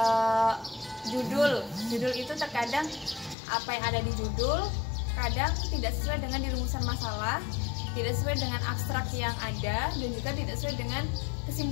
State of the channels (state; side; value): drops out; right; at 3.4 s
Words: judul itu terkadang apa yang ada di judul kadang tidak sesuai dengan dirumusan masalah, tidak sesuai dengan abstrak yang ada, dan juga tidak sesuai dengan